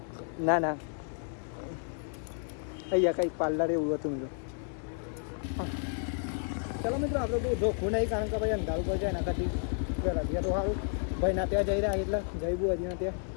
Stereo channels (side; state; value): right; silent; 57 dB below the other